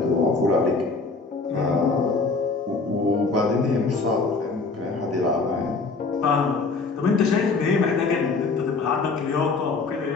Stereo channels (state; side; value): quieter; right; 4.1 dB